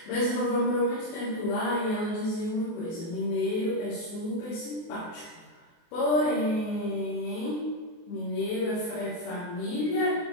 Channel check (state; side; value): late; right; 24 ms